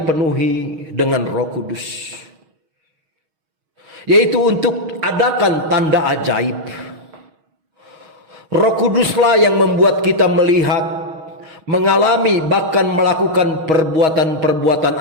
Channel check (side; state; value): left; late; 6.3 ms